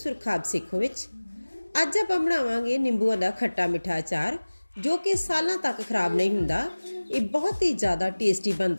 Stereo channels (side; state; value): both; inverted; correlation -1.00